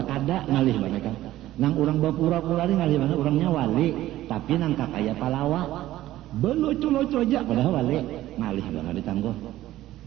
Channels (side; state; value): left; quieter; 14.8 dB